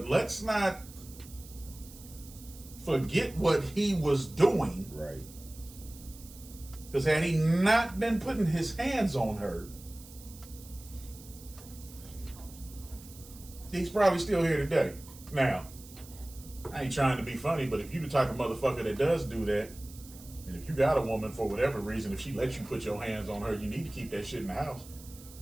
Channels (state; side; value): noise; right; hiss, 19 dB below the sound